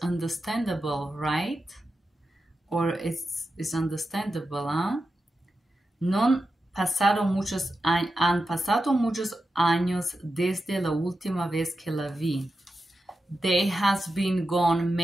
understandable, right? Or it's understandable, huh? Han pasado muchos años desde la última vez que la vi. There has been gone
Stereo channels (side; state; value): both; normal; correlation 0.90